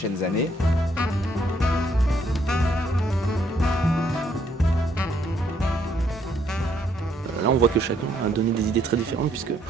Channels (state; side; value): normal; both; correlation 0.70